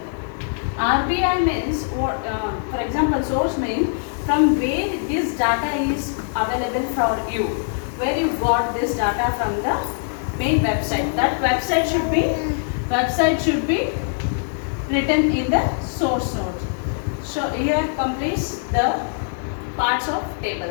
RBI means, for example, source means from where this data is available for you, where you got this data from the main website. That website should be written in the source note. So here completes the parts of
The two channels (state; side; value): silent; right; 64 dB below the other